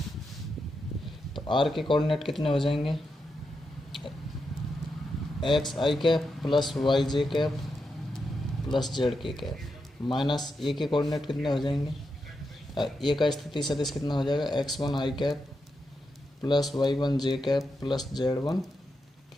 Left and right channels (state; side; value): normal; both; correlation 0.86